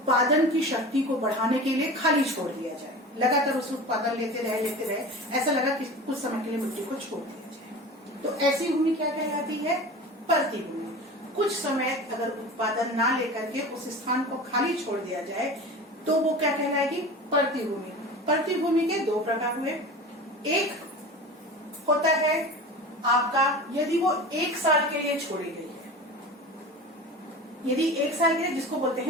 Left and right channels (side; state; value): both; normal; correlation 0.34